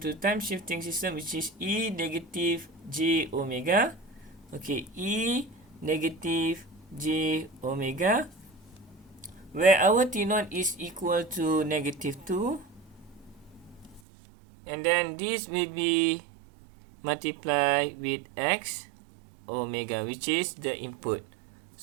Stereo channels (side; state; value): left; drops out; at 14.0 s